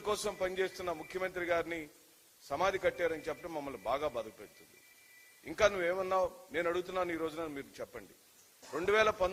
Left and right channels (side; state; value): both; identical; correlation 1.00